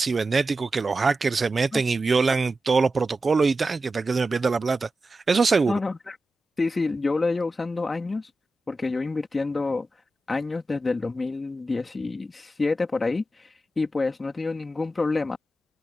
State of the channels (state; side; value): normal; both; correlation 0.92